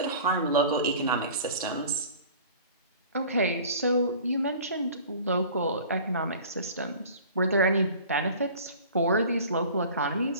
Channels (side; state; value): both; inverted; correlation -0.44